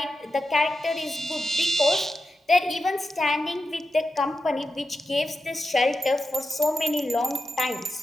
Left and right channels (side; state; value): both; normal; correlation 0.90